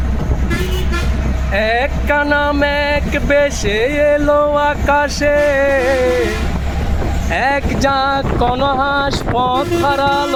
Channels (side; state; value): both; identical; correlation 1.00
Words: এক কানা মেঘ বেশে এলো আকাশে, এক ঝাঁক কোনো হাঁস পথ